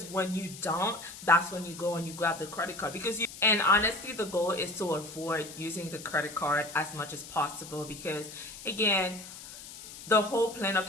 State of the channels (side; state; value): left; noise; hiss, 14 dB below the sound